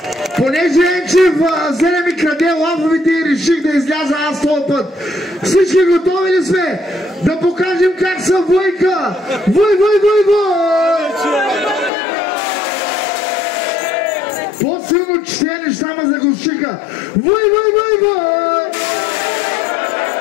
Понеже Енчев взе ми краде лафовете и реших да изляза аз този път. Всички готови ли сме? Да покажем как са войка! Вой! По-силно че тези неща ме заглушиха. Вой!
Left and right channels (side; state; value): right; drops out; at 11.9 s